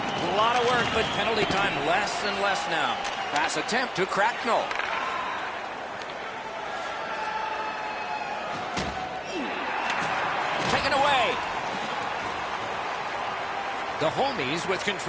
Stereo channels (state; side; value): identical; both; correlation 1.00